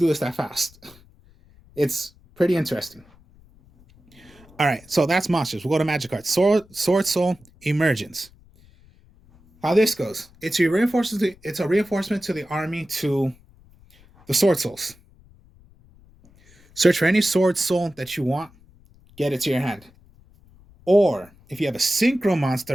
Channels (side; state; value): left; noise; rumble, 27 dB below the sound